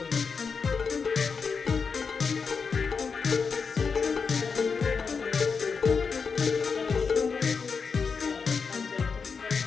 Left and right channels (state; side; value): quieter; right; 5.4 dB